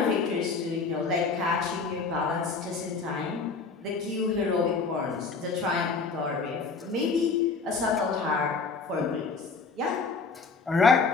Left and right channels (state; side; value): quieter; right; 4.5 dB